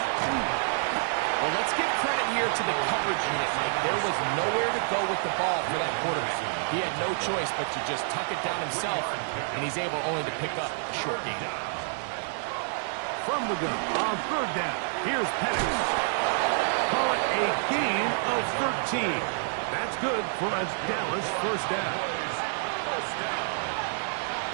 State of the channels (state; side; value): silent; left; 59 dB below the other